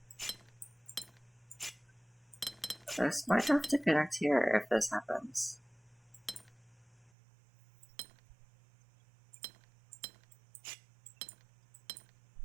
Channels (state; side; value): drops out; left; at 7.1 s